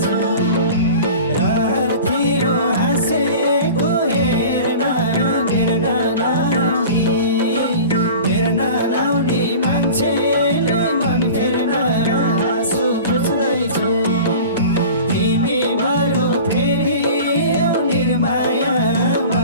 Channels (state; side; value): inverted; both; correlation -0.38